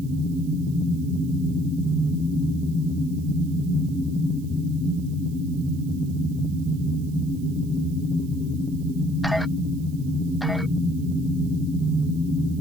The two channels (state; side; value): noise; right; hiss, 24 dB below the sound